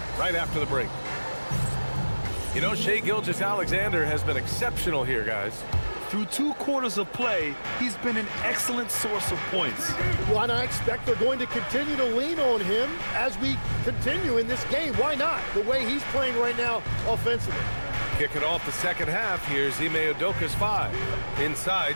right after the break. You know, Shai Gilgeous-Alexander has been exceptional here, guys. Through 2 quarters of play, he's been an excellent source of points. Well, and I expect they're going to continue to lean on him as we continue in this game. Why not? The way he's playing right now offensively. Kicking off the second half, here's Ime Udoka's 5. Inside,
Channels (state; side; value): inverted; both; correlation -1.00